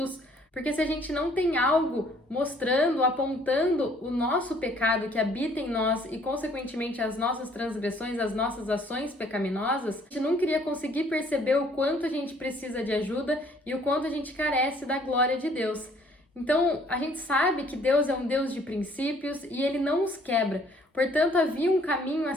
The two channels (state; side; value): normal; both; correlation 0.60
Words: Porque se a gente não tem algo mostrando, apontando o nosso pecado que habita em nós e, consequentemente, as nossas transgressões, as nossas ações pecaminosas, a gente nunca iria conseguir perceber o quanto a gente precisa de ajuda e o quanto a gente carece da glória de Deus. Então, a gente sabe que Deus é um Deus de princípios e Ele não os quebra. Portanto, havia um caminho a